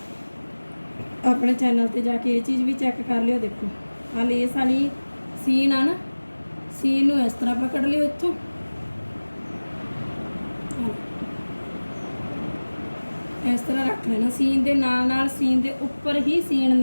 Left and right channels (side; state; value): both; inverted; correlation -1.00